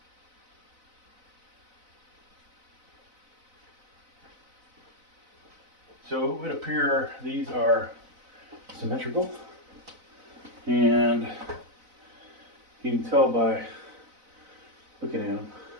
So it would appear these are symmetrical, and you can tell by looking at them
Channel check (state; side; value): late; left; 4.0 ms